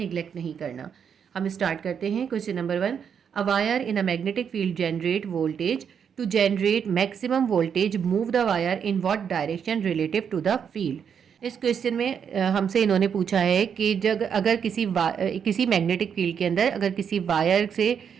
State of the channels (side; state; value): left; quieter; 7.5 dB